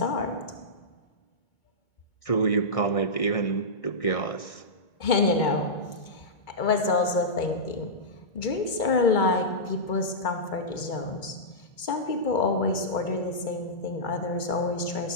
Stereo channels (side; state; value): right; late; 2.2 ms